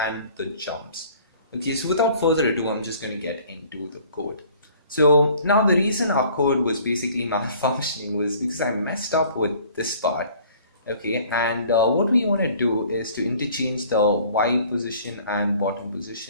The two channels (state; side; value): inverted; both; correlation -0.53